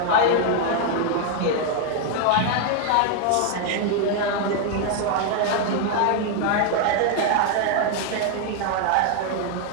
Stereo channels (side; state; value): both; different; correlation 0.00